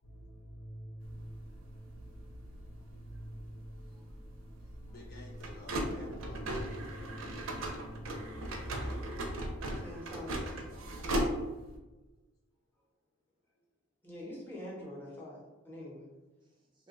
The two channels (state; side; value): normal; both; correlation 0.55